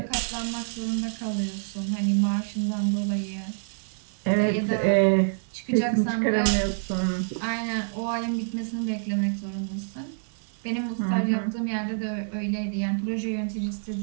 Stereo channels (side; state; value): left; silent; digital silence